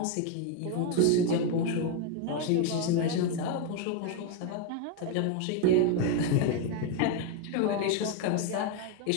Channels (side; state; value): both; different; correlation 0.01